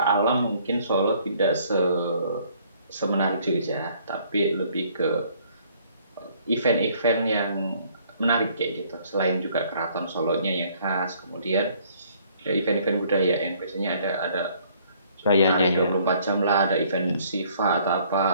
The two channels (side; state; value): both; inverted; correlation -0.61